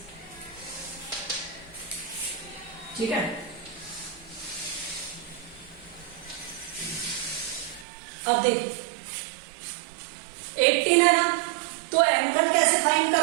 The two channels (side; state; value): left; drops out; at 7.9 s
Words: ठीक है। अब देखो 18 है ना, तो एंगल कैसे फाइंड